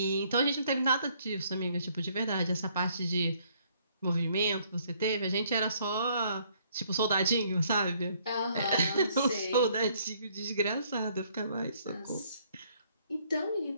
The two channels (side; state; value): both; inverted; correlation -0.65